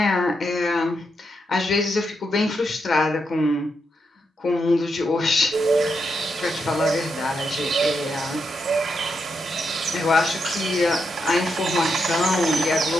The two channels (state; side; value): normal; both; correlation 0.83